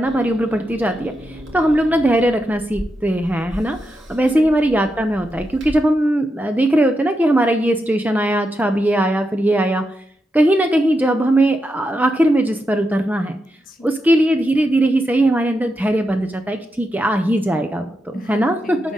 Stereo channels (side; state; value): both; normal; correlation 0.86